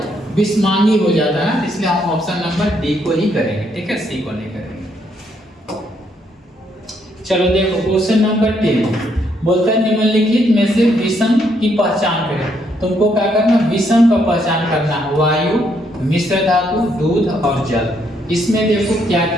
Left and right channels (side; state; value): both; normal; correlation 0.73